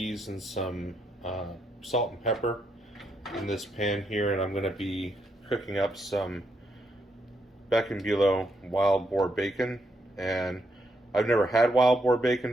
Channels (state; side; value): normal; both; correlation 0.78